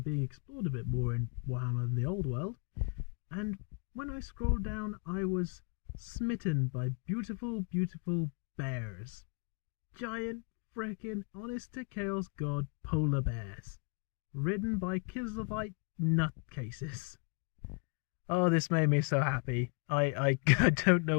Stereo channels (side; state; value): right; quieter; 37.4 dB